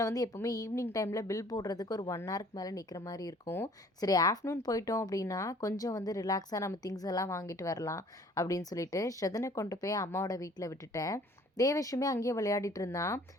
வந்து எப்போவுமே ஈவினிங் டைமில் பில் போடுறதுக்கு ஒரு 1 ஹவருக்கு மேலே நிற்கிற மாதிரி இருக்கும். சரி ஆஃப்டர்நூன் போயிட்டோம் அப்படின்னா கொஞ்சம் வந்து ரிலாக்ஸாக நம்ம திங்ஸ் எல்லாம் வாங்கிட்டு வரலாம் அப்படின்னு சொல்லிட்டு ஸ்ரதனை கொண்டு போய் அம்மாவோட வீட்டில் விட்டுட்டேன். தேவேஷுமே அங்கேயே விளையாடிட்டு இருந்தான்.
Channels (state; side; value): normal; both; correlation 0.54